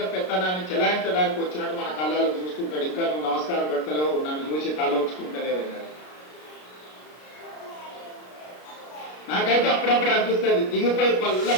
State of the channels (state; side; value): late; right; 33 ms